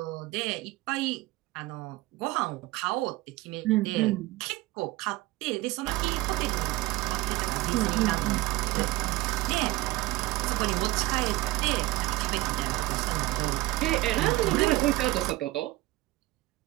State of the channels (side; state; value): left; quieter; 18.9 dB